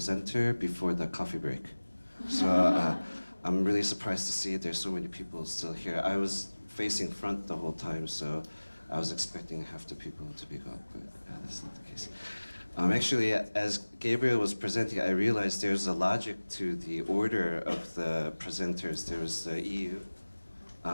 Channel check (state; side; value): inverted; both; correlation -1.00